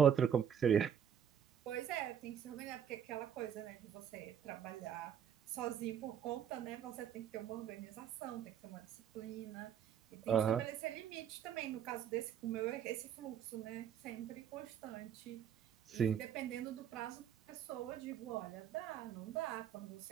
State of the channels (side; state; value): left; quieter; 8.7 dB